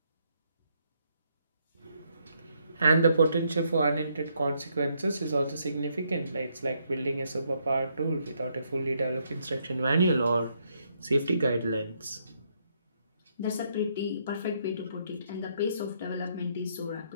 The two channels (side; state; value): both; inverted; correlation -0.74